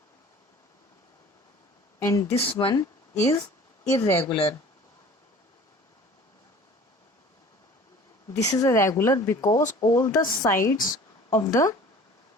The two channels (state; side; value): normal; both; correlation 0.46